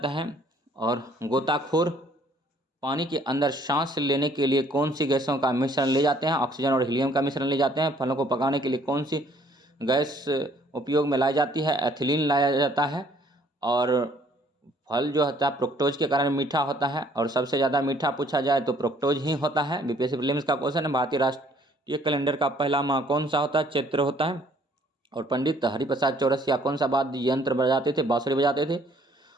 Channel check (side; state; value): both; normal; correlation 0.61